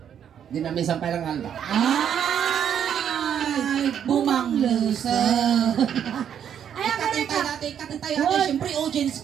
di namin sampay lang alda. Ay, Bumanglusa. Ay, aguray ka. Katay tayo. Siyempre, audience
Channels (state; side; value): quieter; left; 8.9 dB